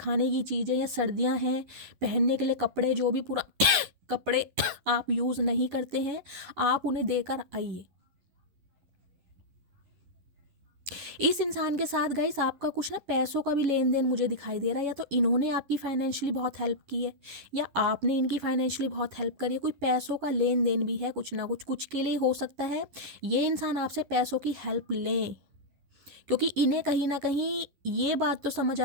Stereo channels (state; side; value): late; left; 11 ms